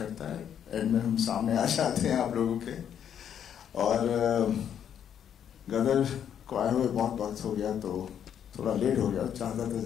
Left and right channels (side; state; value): right; quieter; 9.0 dB